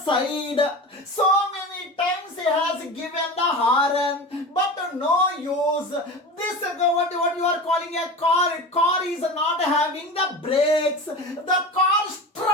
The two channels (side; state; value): both; normal; correlation 0.30